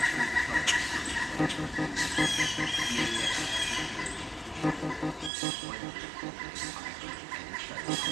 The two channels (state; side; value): drops out; left; at 5.3 s